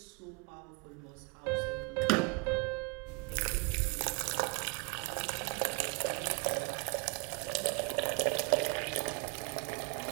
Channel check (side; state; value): left; quieter; 32.1 dB